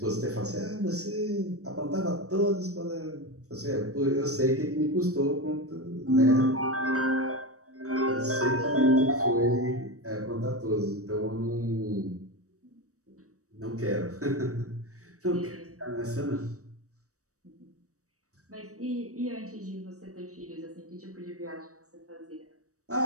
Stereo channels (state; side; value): late; left; 0.65 ms